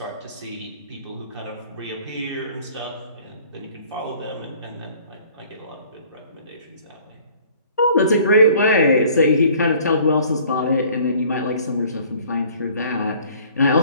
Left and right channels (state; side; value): inverted; both; correlation -0.54